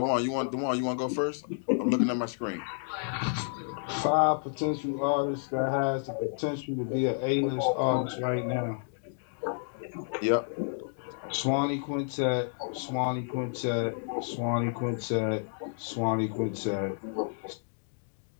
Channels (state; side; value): silent; right; digital silence